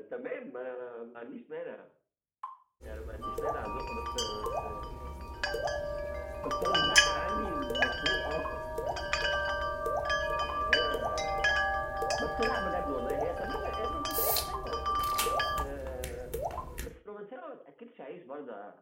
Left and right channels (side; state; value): both; identical; correlation 1.00